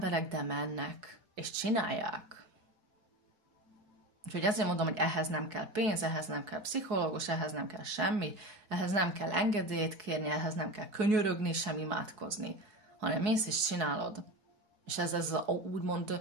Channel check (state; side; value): late; left; 4.7 ms